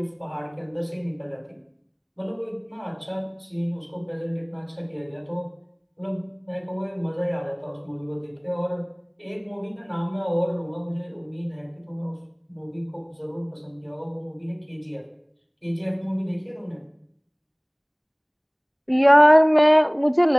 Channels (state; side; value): identical; both; correlation 1.00